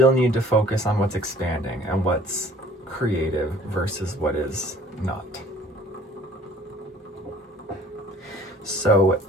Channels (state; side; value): normal; both; correlation 0.53